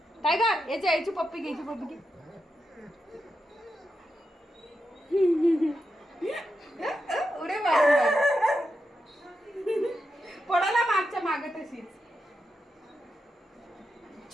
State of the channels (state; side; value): normal; both; correlation 0.87